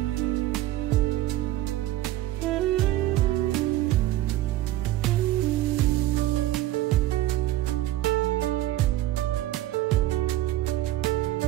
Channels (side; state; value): left; quieter; 15.1 dB